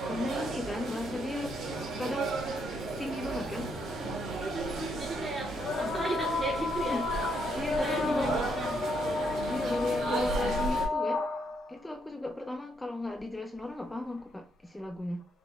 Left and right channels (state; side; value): normal; both; correlation 0.75